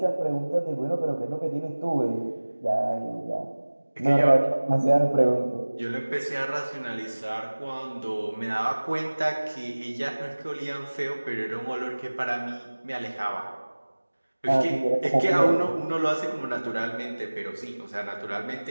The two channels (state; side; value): inverted; both; correlation -1.00